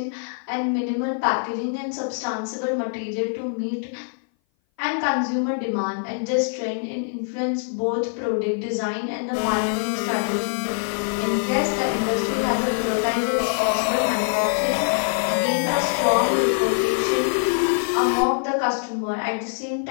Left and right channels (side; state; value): right; silent; 58 dB below the other